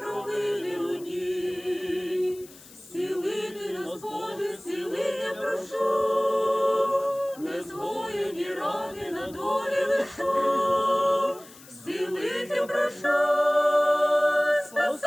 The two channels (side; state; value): left; noise; hiss, 21 dB below the sound